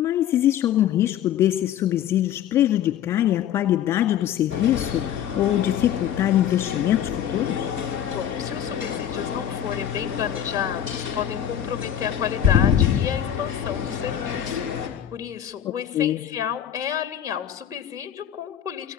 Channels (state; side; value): quieter; right; 10.3 dB